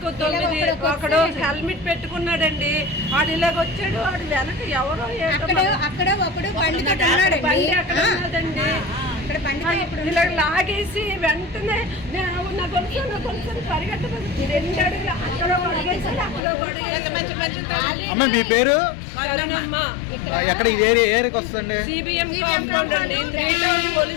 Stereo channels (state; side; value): drops out; right; at 16.4 s